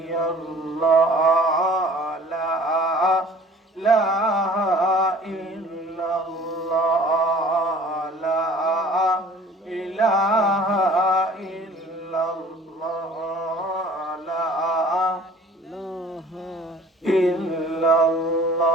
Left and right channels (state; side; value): normal; both; correlation 0.49